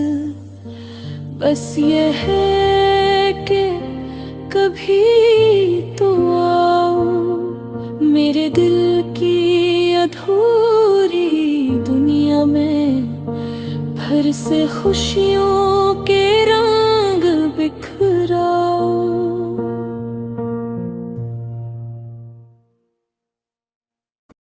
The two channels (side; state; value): both; identical; correlation 1.00